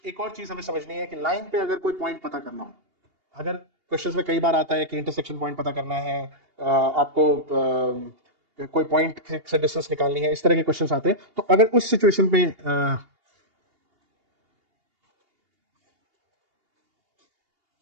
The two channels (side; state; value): left; late; 2.8 ms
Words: एक और चीज हमें समझनी है कि लाइन पे अगर कोई पॉइंट पता करना हो, अगर क्वेश्चंस में कई बार आता है कि इंटरसेक्शन पॉइंट पता करना है, आपको कोई पॉइंट से डिस्टेंस निकालनी है, इस तरह के क्वेश्चंस आते हैं। तो अगर उस सिचुएशन पे